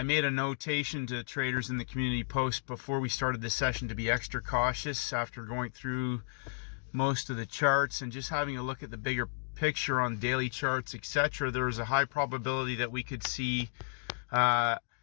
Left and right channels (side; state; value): right; silent; digital silence